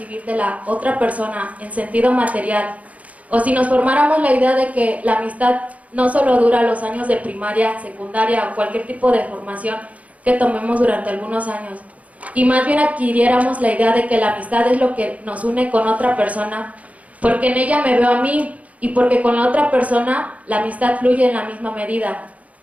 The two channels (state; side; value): late; left; 0.068 ms